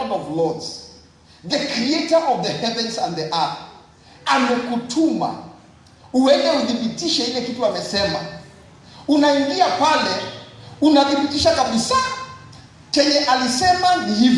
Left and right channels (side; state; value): both; identical; correlation 1.00